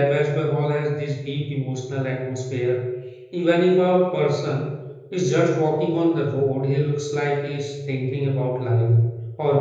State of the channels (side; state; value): both; identical; correlation 1.00